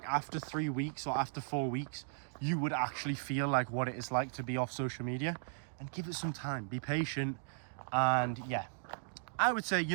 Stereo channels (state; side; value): silent; left; digital silence